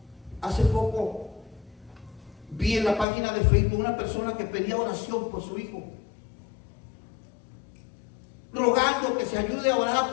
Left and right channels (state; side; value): drops out; right; at 3.1 s